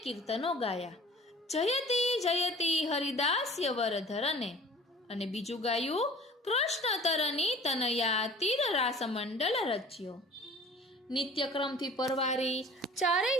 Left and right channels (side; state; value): both; normal; correlation 0.46